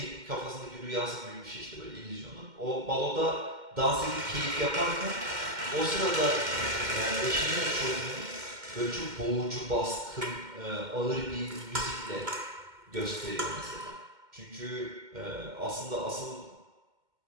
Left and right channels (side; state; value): left; late; 2.1 ms